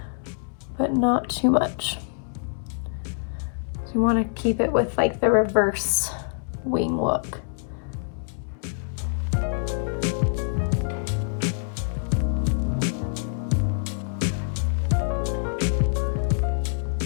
but not too much. So you want to keep it with like the reverse wing look.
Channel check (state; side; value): silent; right; 61 dB below the other